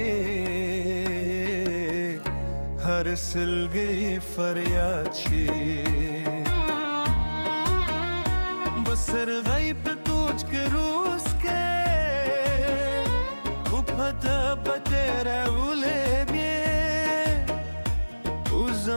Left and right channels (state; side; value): inverted; both; correlation -1.00